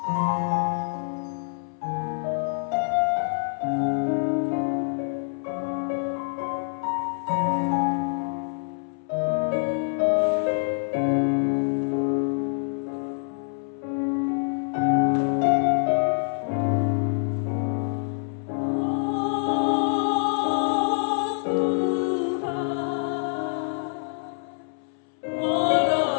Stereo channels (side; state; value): right; silent; 61 dB below the other